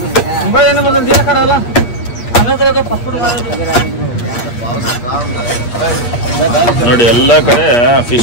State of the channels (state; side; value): late; right; 8.5 ms